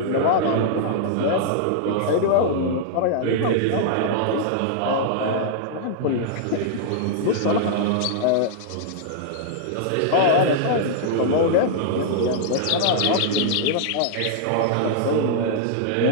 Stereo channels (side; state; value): both; different; correlation -0.01